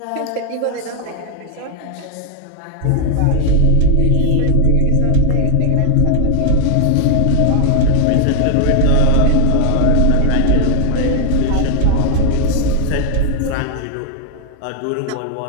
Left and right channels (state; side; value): different; both; correlation 0.00